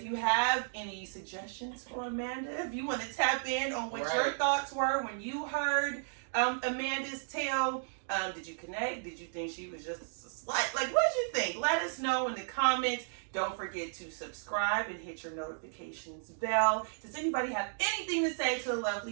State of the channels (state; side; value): silent; left; digital silence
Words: you have any suggestions for Amanda, if you want to tap in on what your thoughts were when you heard Amanda's tale, did you connect? Did you think she was just a slut? Like, what did you think? Let us know in the comments. Don't forget to subscribe and hit your notifications bell. Does anybody have anything to say to the